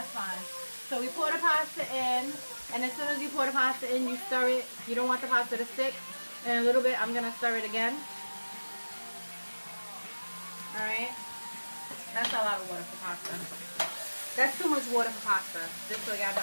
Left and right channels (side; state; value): both; inverted; correlation -1.00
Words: fine. So we pour the pasta in, and as soon as you pour the pasta in, you stir it. You don't want the pasta to stick. In a little bit, I'm going to stir it again. Alright. That's a lot of water for pasta. That's too much water for pasta. Just so y'all